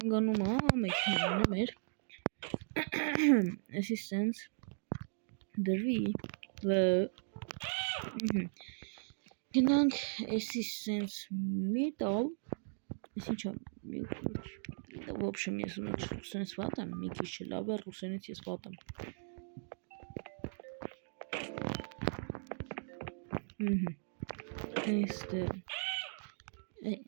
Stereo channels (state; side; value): silent; left; digital silence